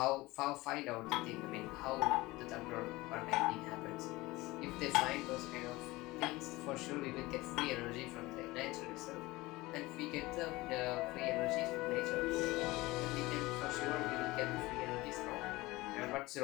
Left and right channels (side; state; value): right; quieter; 20.5 dB